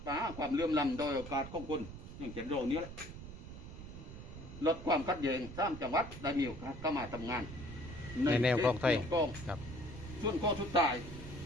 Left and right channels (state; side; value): noise; right; rumble, 11 dB below the sound